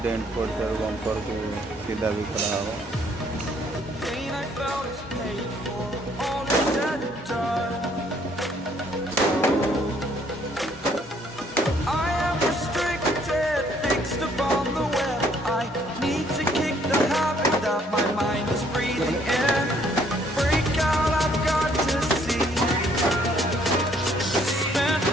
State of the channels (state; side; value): normal; both; correlation 0.64